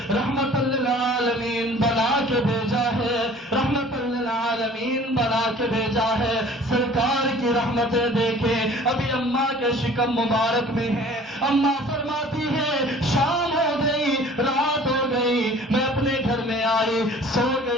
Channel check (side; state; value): both; normal; correlation 0.49